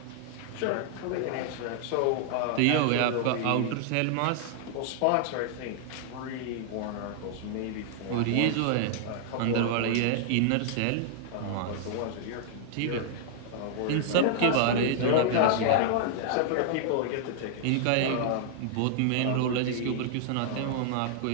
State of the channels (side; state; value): both; different; correlation -0.01